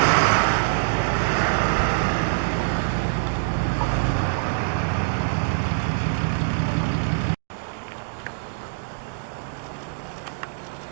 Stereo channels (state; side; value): silent; left; digital silence